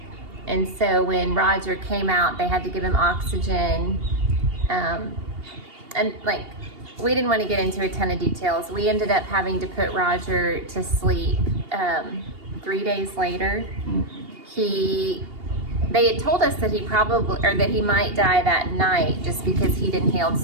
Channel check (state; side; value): late; left; 2.8 ms